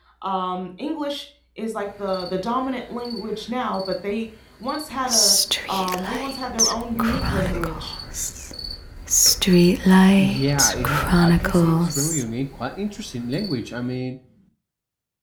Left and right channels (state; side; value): identical; both; correlation 1.00